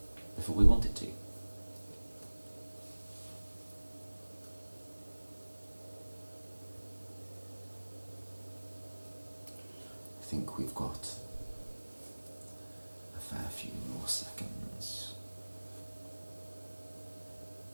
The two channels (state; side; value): inverted; both; correlation -1.00